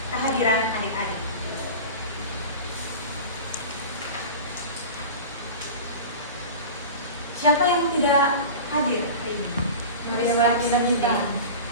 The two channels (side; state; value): both; inverted; correlation -0.33